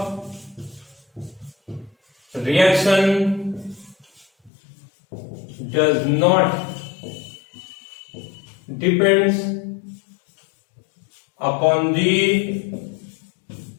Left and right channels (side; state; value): right; drops out; at 4.5 s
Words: reaction does not depends upon the